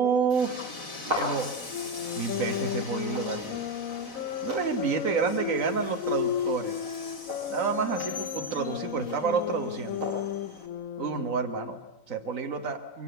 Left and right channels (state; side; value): late; right; 3.9 ms